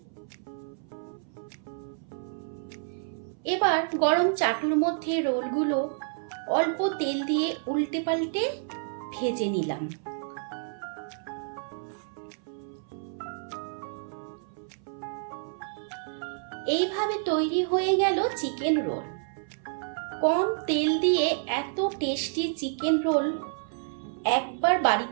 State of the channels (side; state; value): left; silent; 57 dB below the other